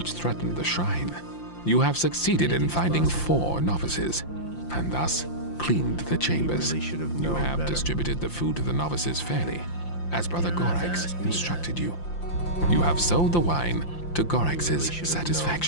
threatened the shrine. You have succeeded in finding 4 novices, and thus cleaned the chambers. You have distributed the food to the novices fairly, as Brother Gorax instructed you. You have sold the wine to Gorax's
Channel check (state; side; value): late; right; 5.8 ms